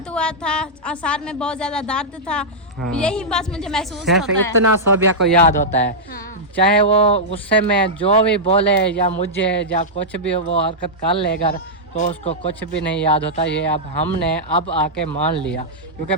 हुआ था सर में बहुत ज़्यादा दर्द था हाँ। यही बस मुझे महसूस होता है इतना सोबिया को याद होता है हाँ। चाहे वो गुस्से में जो भी बोले या मुझे या कुछ भी वो हरकत कर लेगा तो उसको कुछ भी नहीं याद होता ये अब हमने अब आके मान लिया क्योंकि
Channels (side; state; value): both; normal; correlation -0.09